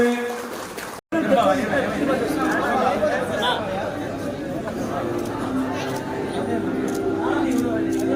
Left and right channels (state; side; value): identical; both; correlation 1.00